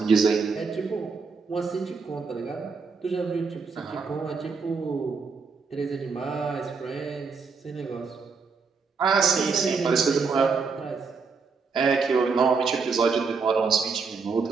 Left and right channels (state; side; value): quieter; left; 5.0 dB